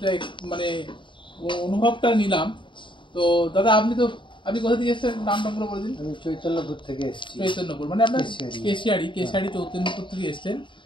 মানে অনুভবটা নিলাম। তো দাদা আপনি কোথা থেকে এসেছেন, নামটা পুরো বলে দিন। আমি চৈতন্যপুর থেকে এসেছি। চৈতন্যপুর মানে আপনার কেশিয়াড়ি চৈতন্যপুর থেকে এসেছেন।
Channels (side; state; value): right; late; 0.23 ms